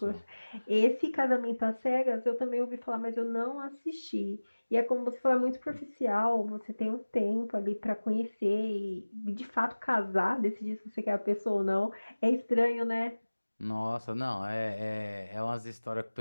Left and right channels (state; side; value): inverted; both; correlation -1.00